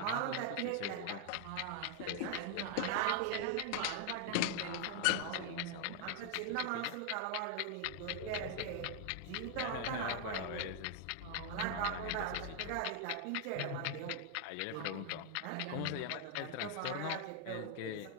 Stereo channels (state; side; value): different; both; correlation 0.00